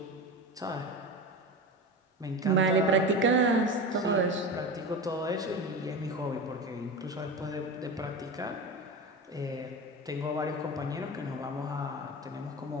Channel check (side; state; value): both; normal; correlation 0.25